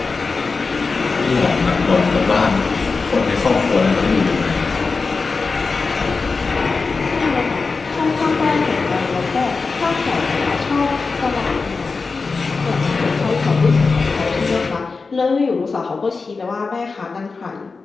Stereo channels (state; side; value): quieter; right; 4.3 dB